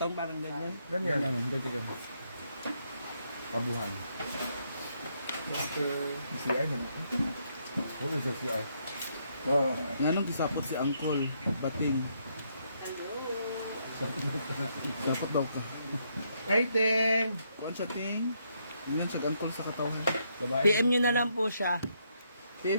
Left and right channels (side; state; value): both; inverted; correlation -0.75